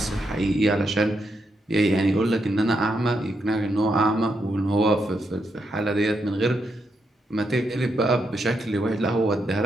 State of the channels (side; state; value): both; normal; correlation 0.81